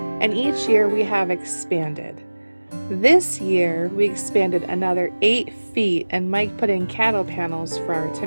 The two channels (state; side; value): inverted; both; correlation -1.00